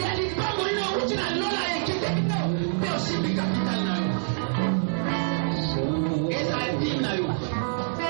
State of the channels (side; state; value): left; silent; digital silence